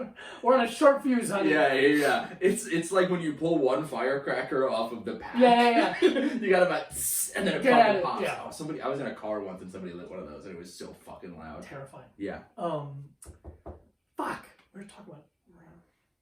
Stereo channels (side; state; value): both; identical; correlation 1.00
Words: We're on a short fuse, honey. Yeah. It's like when you pull one firecracker off of the pack. Yeah. You got about and then it Get at fucking it, pops. yeah. Oh, I was in a car once and somebody lit one of those and it was so fucking loud. Terrifying. Yeah. Fuck. What are we talking about?